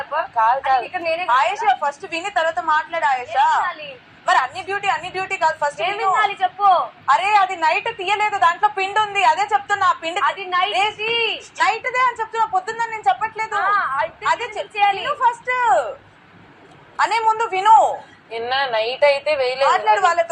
ఇక్కడ నేనే. ఆయేషా ఫస్ట్ విని తర్వాత మాట్లాడు ఆయేషా. మరి అన్ని డ్యూటీ కాదు, ఫస్ట్ ఏం వినాలి చెప్పు. అరే అది నైట్ తీయలేదు, దాంట్లో పిండి ఉంది, అదే చెప్తున్నా. పిండి అది నైట్ దే అని చెప్తున్నా, పొద్దున్న నేను చెప్పట్లేదు. అదే చేయాలి ఫస్ట్ అనే ముందు విను. నిన్న నైట్ అయితే వేయలేదు, మాట్లాడు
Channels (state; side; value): identical; both; correlation 1.00